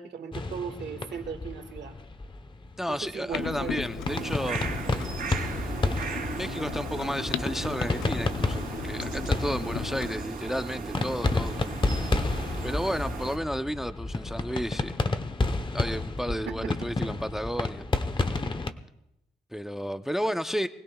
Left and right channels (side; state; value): both; normal; correlation 0.83